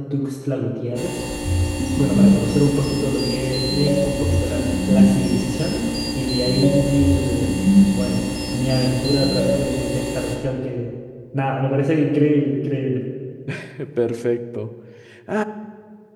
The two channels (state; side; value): identical; both; correlation 1.00